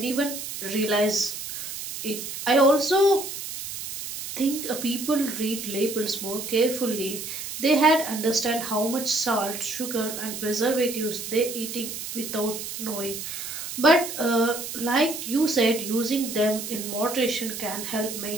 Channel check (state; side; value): noise; right; hiss, 7 dB below the sound